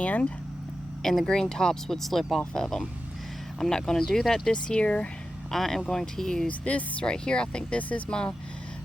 and the green tops would slip off of them. I'm not going to do that this year. I am going to use this right here. I think this is my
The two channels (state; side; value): normal; both; correlation 0.91